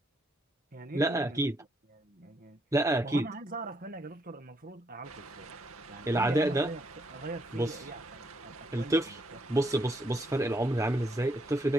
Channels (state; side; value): normal; both; correlation 0.74